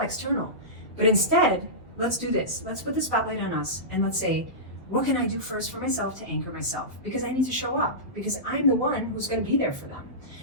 But instead, let's do this. Let's put the spotlight on us and let's say, what can I do first for myself to anchor myself? Because I need to show up, because I'm the one who's going to be there for them.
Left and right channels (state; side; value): normal; both; correlation -0.17